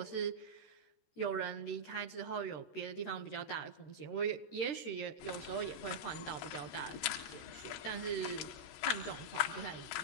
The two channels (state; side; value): late; right; 13 ms